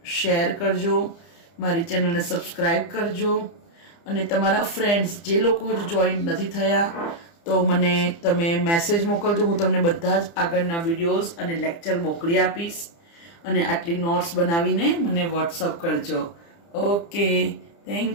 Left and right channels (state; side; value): late; right; 30 ms